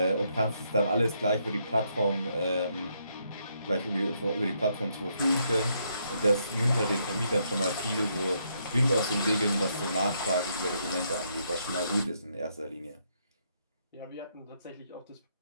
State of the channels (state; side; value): inverted; both; correlation -0.75